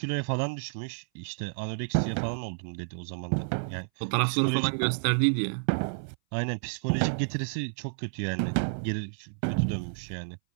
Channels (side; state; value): left; silent; 58 dB below the other